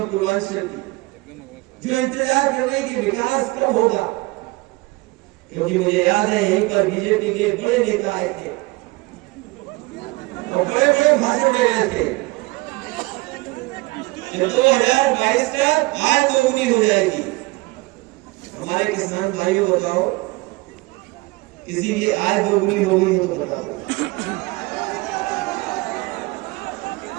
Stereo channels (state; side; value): quieter; left; 23.6 dB